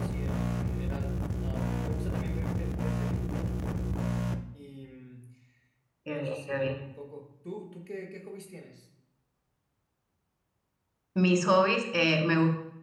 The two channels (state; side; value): identical; both; correlation 1.00